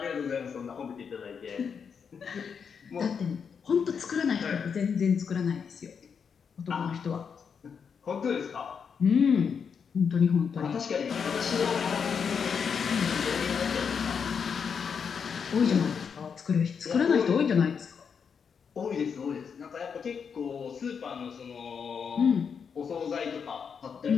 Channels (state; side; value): quieter; right; 6.5 dB